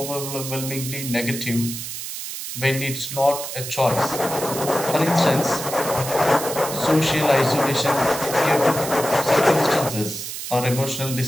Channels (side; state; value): right; noise; hiss, 7 dB below the sound